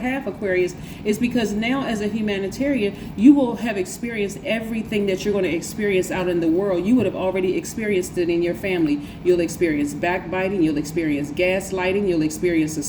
Aquarius, is because now as a humanitarian, you will have experienced everything that you're going to experience out in the world. You would have already experienced it in your family. You'll experience backbiting, you'll experience gaslighting, you'll experience a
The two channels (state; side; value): identical; both; correlation 1.00